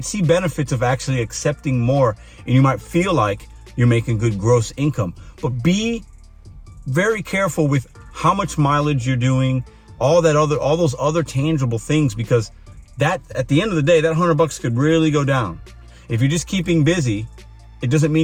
see benefits of actually accepting more, and you might feel like you're making good gross income. But be very careful with how much mileage you're doing, all those other tangible things, because that, at the end of the day, that $100 could really go down. If you're just keeping busy, it doesn't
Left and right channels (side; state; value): both; identical; correlation 1.00